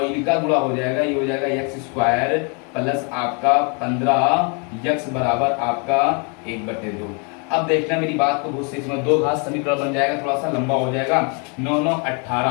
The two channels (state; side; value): quieter; right; 35.0 dB